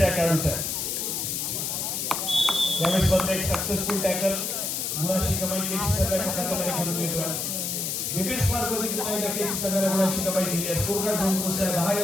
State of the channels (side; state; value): left; noise; hiss, 2 dB below the sound